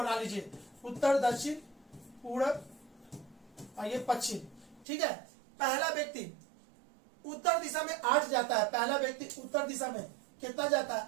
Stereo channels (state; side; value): drops out; left; at 4.9 s